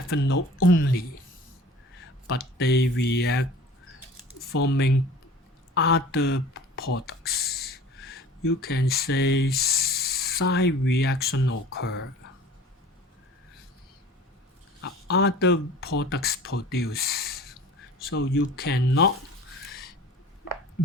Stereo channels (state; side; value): normal; both; correlation 0.43